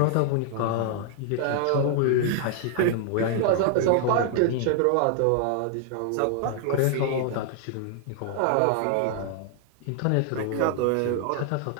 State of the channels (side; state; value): both; different; correlation 0.00